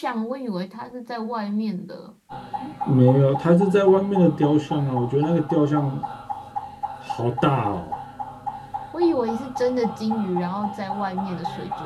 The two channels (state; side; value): identical; both; correlation 1.00